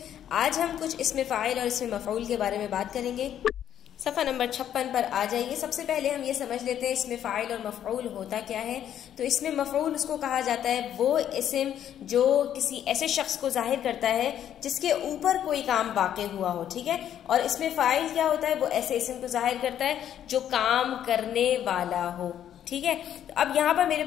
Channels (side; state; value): right; quieter; 10.3 dB